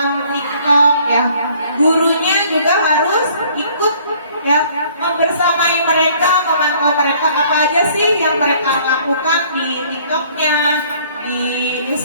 TikTok ya. Gurunya juga harus ikut ya, membersamai mereka, memantau mereka apa aja sih yang mereka lakukan di TikToknya, di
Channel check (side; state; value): both; inverted; correlation -0.58